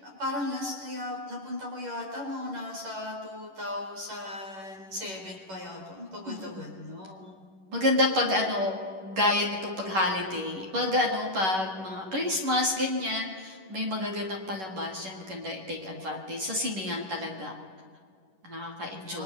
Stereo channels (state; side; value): late; left; 11 ms